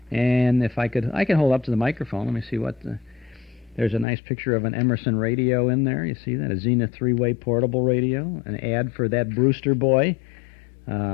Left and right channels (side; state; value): right; drops out; at 4.0 s